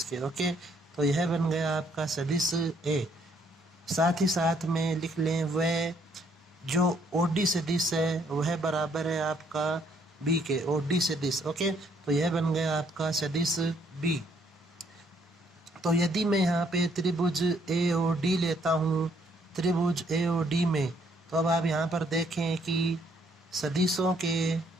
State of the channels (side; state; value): both; normal; correlation 0.67